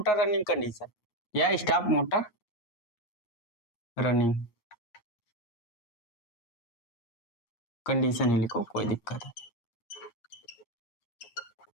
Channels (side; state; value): right; late; 8.6 ms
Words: रनिंग कंडीशन या स्टॉप मोटर रनिंग कंडीशन ही लिखो, कोई दिक्कत है।